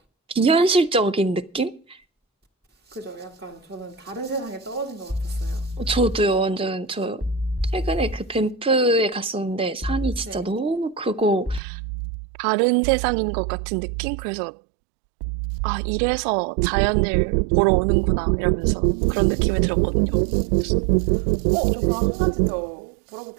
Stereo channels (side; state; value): left; drops out; at 11.6 s